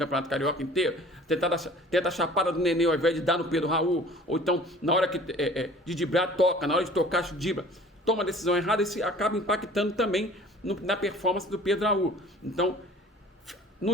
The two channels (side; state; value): both; normal; correlation 0.47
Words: Carioca inteiro, tenta a chapada do Nenê ao invés de dar no Pedro Raul, ou então na hora de driblar, toca, na hora de tocar, dribla, toma a decisão errada, isso acaba impactando também na performance do Pedro Raul. Então,